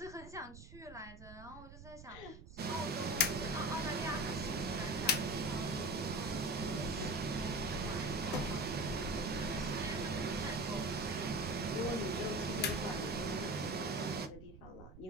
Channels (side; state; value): right; noise; rumble, 16 dB below the sound